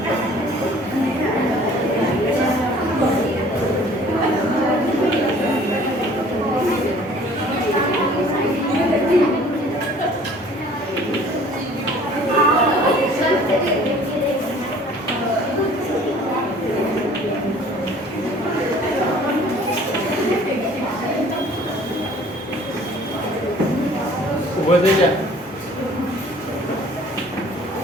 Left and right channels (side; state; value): both; normal; correlation 0.52